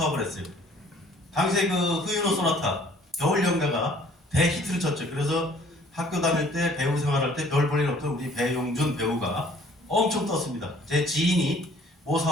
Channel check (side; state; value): both; normal; correlation 0.56